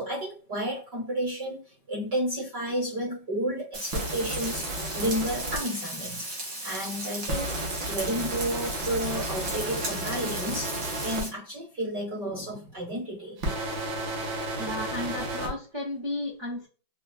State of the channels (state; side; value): late; left; 5.3 ms